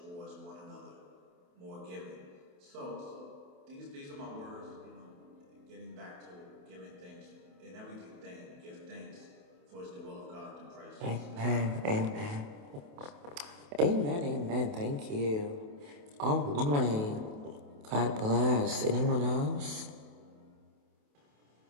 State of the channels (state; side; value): late; left; 28 ms